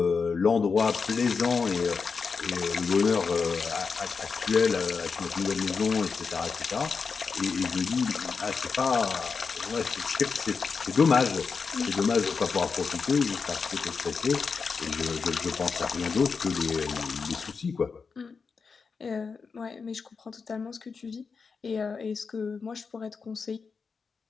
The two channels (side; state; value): right; quieter; 5.2 dB